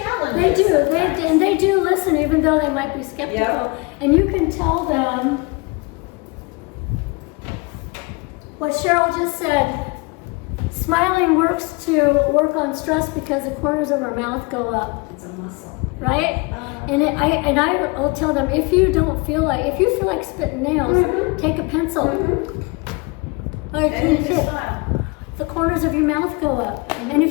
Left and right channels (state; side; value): quieter; right; 27.7 dB